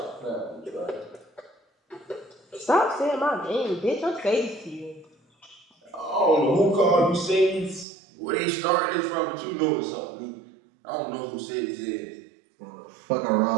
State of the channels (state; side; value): drops out; left; at 7.9 s